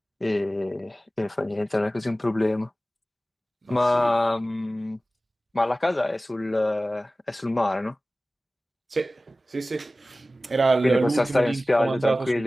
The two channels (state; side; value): normal; both; correlation 0.96